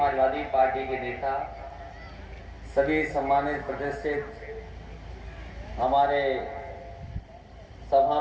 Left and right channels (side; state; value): both; identical; correlation 1.00